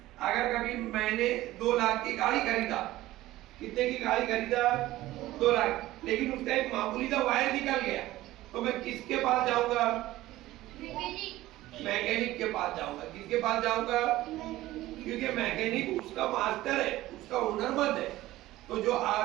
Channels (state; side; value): quieter; left; 16.4 dB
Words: अगर कभी मैंने 2 लाख की गाड़ी खरीदा, कितने की गाड़ी खरीदा? 2 लाख, लेकिन उसका एक मामूली सा वायर निकल गया, तो मैं किसके पास जाऊंगा? मैकेनिक के पास जाऊंगा। किसके पास जाऊंगा? क्योंकि मैकेनिक उसका मास्टर है, उसका हुनरमंद है। तो जो